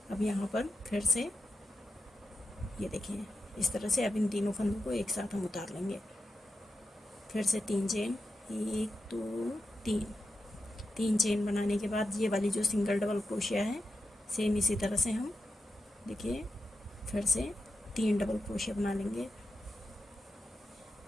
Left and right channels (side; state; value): both; normal; correlation 0.90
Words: अब यहाँ पर फिर से ये देखिए इस तरह से अब इन तीनों फंदों को एक साथ हम उतार लेंगे। फिर से 3 चेन, 1 2 3। 3 चेन बनाने के बाद ये वाली जो सिंगल डबल क्रोशिया है सेम इसी तरह से हम देखिए फिर से 3 डबल क्रोशिया बना लेंगे।